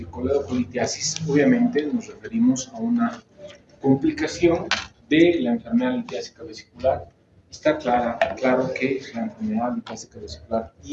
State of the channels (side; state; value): both; identical; correlation 1.00